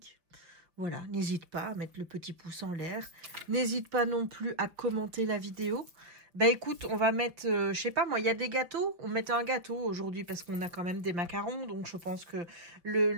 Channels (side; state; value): left; late; 5.4 ms